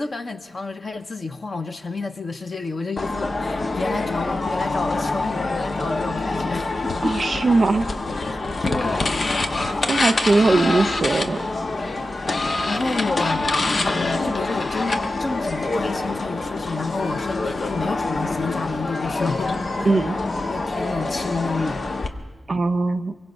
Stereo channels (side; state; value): both; normal; correlation 0.91